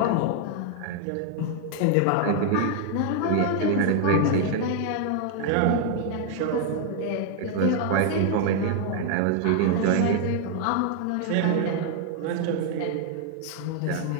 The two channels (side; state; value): both; different; correlation 0.00